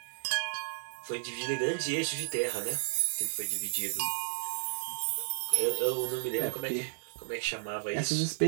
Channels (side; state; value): left; silent; digital silence